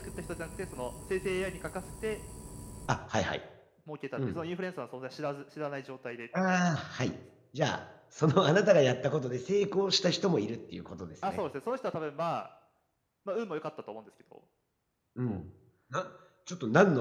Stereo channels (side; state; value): both; identical; correlation 1.00